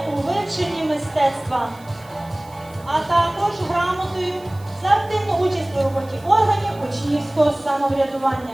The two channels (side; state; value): right; noise; hiss, 26 dB below the sound